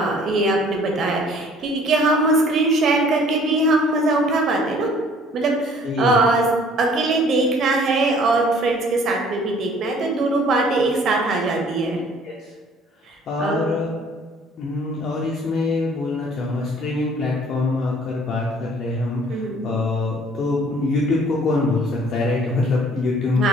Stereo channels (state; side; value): normal; both; correlation 0.55